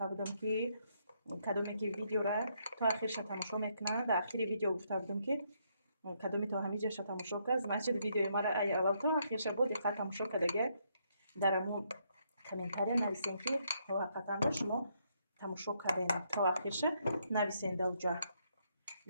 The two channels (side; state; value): both; inverted; correlation -0.74